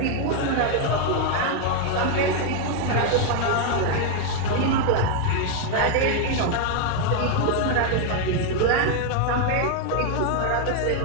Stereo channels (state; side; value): different; both; correlation 0.00